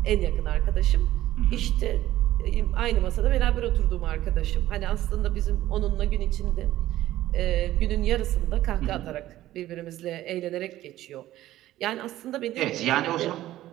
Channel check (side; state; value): left; quieter; 14.6 dB